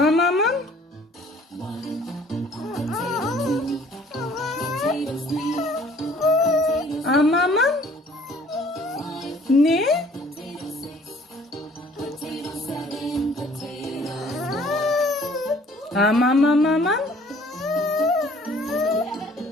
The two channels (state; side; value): normal; both; correlation 0.56